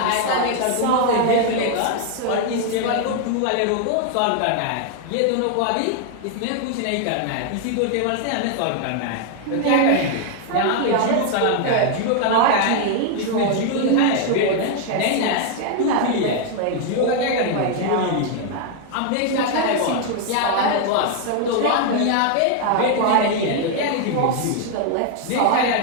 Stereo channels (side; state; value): both; different; correlation 0.00